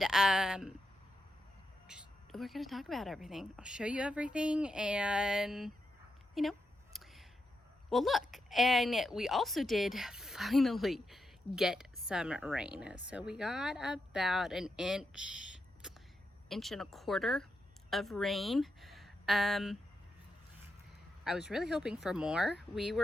we're gonna talk about everything. I'll show you everything and well, look, and we also did finally get some rain. So we got about an inch and a quarter of rain. I was really hoping for more. We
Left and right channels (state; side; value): normal; both; correlation 0.85